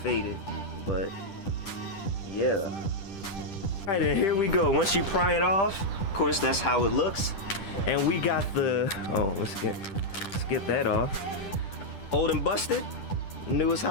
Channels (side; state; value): right; late; 10 ms